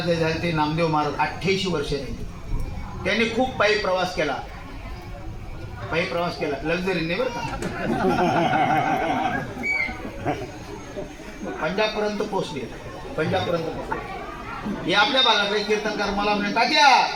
जे झाले ते नामदेव महाराज 88 वर्ष राहिले. त्यांनी खूप पायी प्रवास केला. पायी प्रवास केला लक्झरीने बरं का. पंजाबपर्यंत पोहोचले. पंजाबपर्यंत पोहोचले. हे आपल्या भागाकडे कीर्तनकार मला म्हणे तात्या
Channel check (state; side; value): identical; both; correlation 1.00